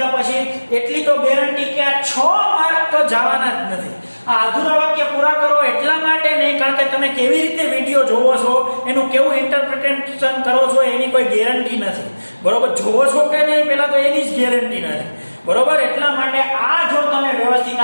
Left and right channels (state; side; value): inverted; both; correlation -1.00